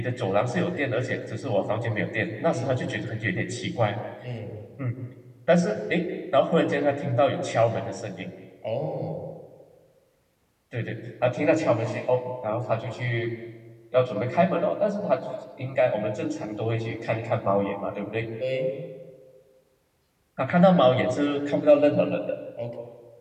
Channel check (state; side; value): identical; both; correlation 1.00